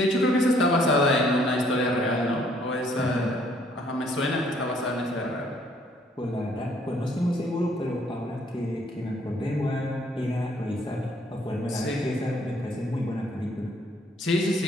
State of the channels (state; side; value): normal; both; correlation 0.64